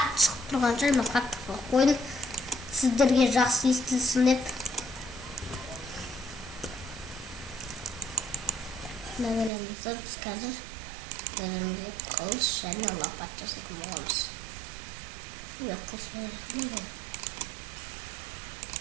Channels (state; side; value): drops out; left; at 9.5 s